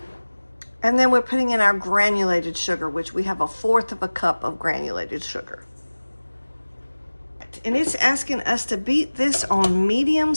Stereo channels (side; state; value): both; inverted; correlation -1.00